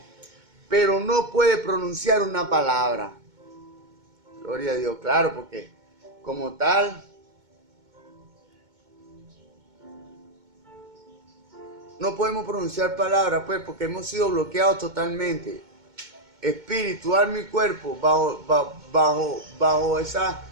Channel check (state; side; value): late; left; 2.2 ms